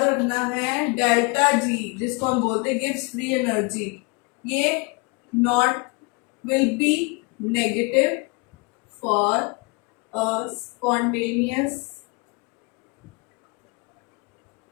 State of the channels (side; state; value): right; quieter; 30.4 dB